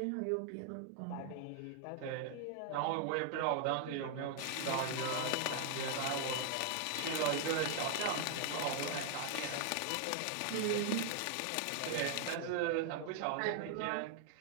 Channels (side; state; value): both; different; correlation 0.00